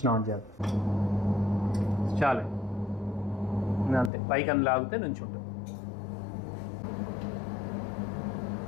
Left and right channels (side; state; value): right; drops out; at 4.1 s